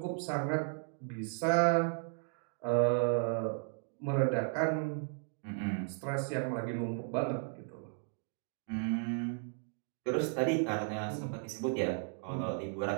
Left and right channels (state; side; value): silent; left; 54 dB below the other